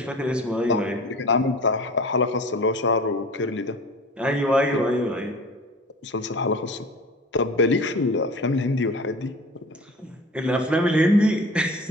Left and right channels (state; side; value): normal; both; correlation 0.40